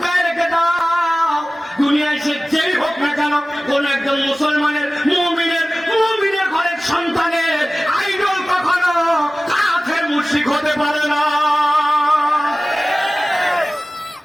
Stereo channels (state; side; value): normal; both; correlation 0.97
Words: রেখে দাও, দুনিয়ায় সে যেই হোক না কেন, কোন একজন মুসলমানের মুমিনের ঘরের সন্তানের আইডল কখনো কাফের মুশরিক হতে পারে না।